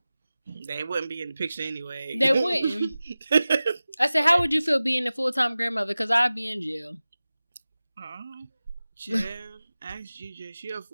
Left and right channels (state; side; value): inverted; both; correlation -0.96